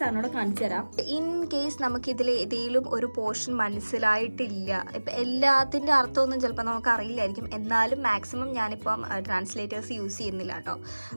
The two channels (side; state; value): both; inverted; correlation -1.00